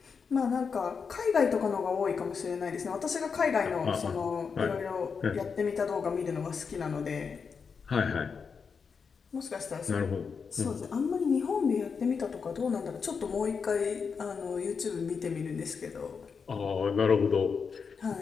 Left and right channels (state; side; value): quieter; right; 5.7 dB